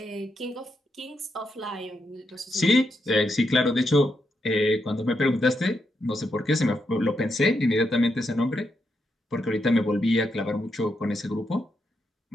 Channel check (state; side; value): normal; both; correlation 0.82